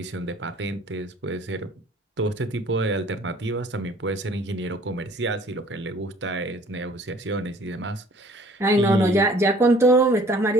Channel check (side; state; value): both; normal; correlation 0.54